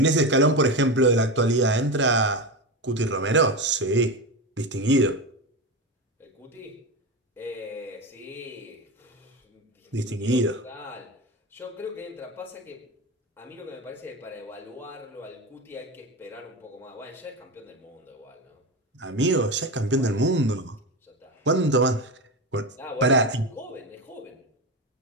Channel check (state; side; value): normal; both; correlation 0.19